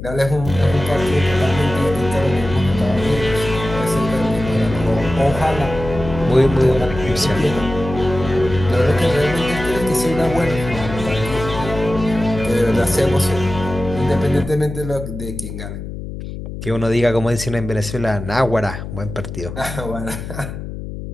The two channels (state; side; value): noise; left; hum, 9 dB below the sound